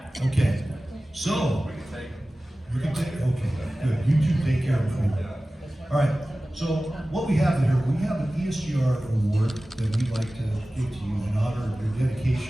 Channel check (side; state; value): both; normal; correlation 0.97